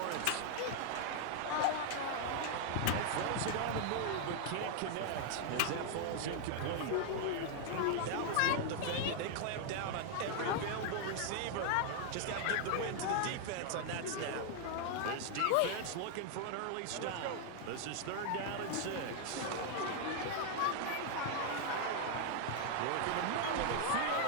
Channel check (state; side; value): different; both; correlation 0.00